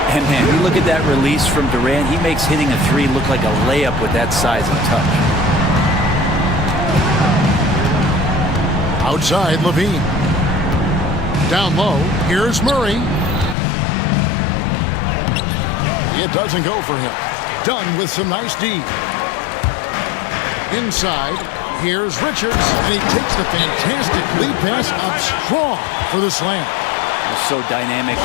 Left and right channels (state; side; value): drops out; right; at 13.6 s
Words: And man, you look at that release from Durant. He makes hitting a three look like a layup with that size and touch. Outside, Levine. Down low, here's Murray. It doesn't go for him. Dunn with some nice D. Inside, here's Richards, and he takes the fantastic lead pass up strong for the slam. He's so dynamic